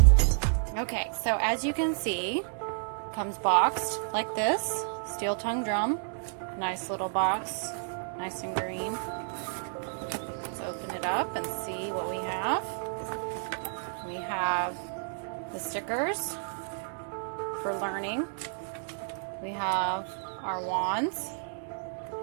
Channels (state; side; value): silent; left; digital silence